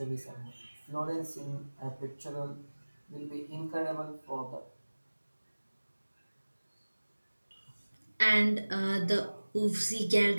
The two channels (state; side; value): inverted; both; correlation -1.00